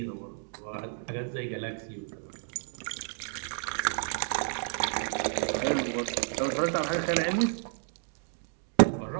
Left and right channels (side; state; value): left; silent; 57 dB below the other